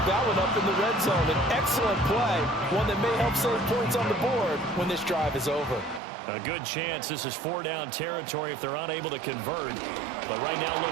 that one up in the red zone. An excellent play, one that may help save points on the board when this drive is over. A good chance this is 4-down territory if they're unable to convert. But right now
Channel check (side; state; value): left; drops out; at 6.0 s